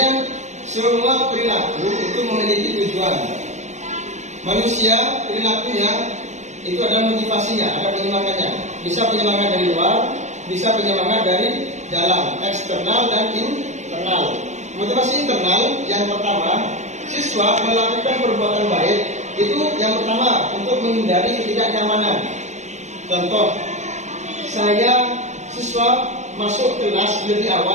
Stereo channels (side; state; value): left; late; 0.34 ms